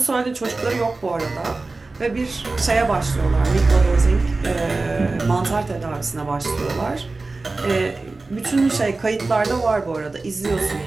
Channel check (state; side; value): quieter; left; 3.5 dB